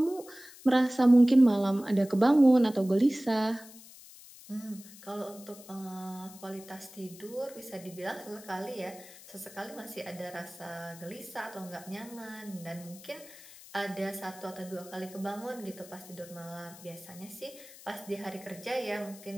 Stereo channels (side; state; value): left; noise; hiss, 19 dB below the sound